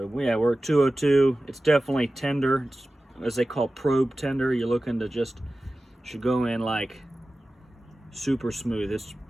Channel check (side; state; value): both; normal; correlation 0.95